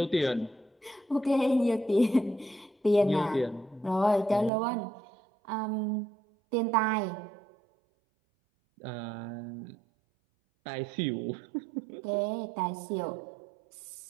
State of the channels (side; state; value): left; drops out; at 4.5 s